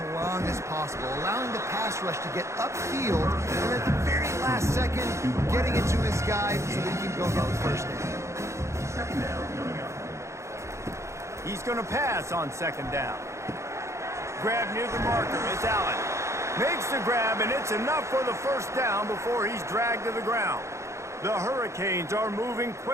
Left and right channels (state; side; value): late; left; 0.14 ms